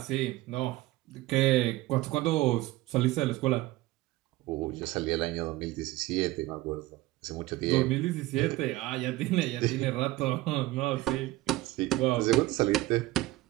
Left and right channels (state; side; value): quieter; left; 18.1 dB